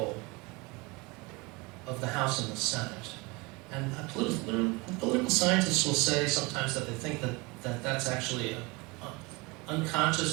of the House and the Senate. And political scientists will say sometimes that they think that that's actually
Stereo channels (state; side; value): quieter; left; 25.4 dB